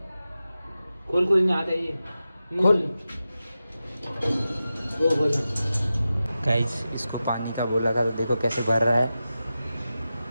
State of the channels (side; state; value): both; inverted; correlation -0.93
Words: खोल नहीं आता ये, खोल। गाइस इसको पानी का बोला था, तो देखो कैसे भर रहा है।